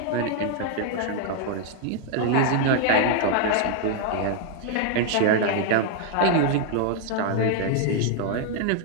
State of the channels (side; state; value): both; different; correlation 0.00